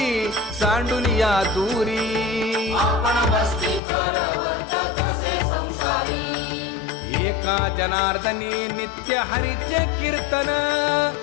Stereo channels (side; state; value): right; drops out; at 3.8 s